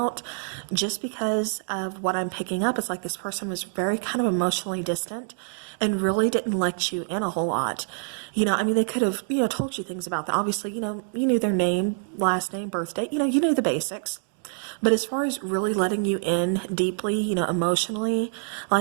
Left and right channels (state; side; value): silent; left; 56 dB below the other